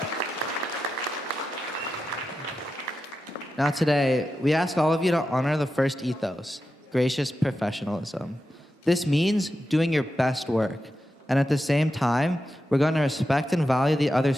Now today, we ask all of you to honor the First ethos, gracious professionalism. This means doing your best work. And at the same time, we're going to respect and value the other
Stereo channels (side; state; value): both; normal; correlation 0.89